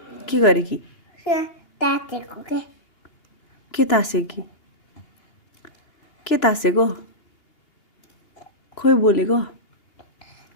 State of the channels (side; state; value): right; late; 2.8 ms